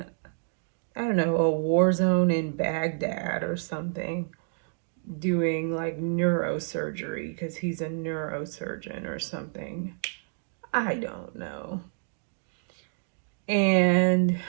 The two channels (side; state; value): left; silent; digital silence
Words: I don't know, a war zone in Baghdad or something, doing like neurosurgery because he's a neurosurgeon or something. I don't know. And